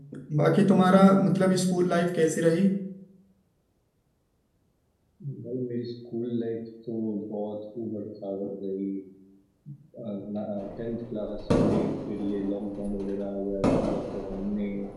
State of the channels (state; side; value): identical; both; correlation 1.00